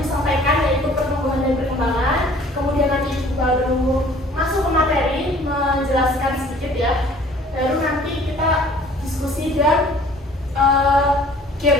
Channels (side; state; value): both; normal; correlation 0.53